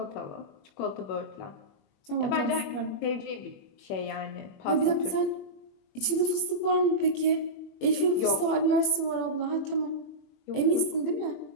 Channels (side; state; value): right; late; 21 ms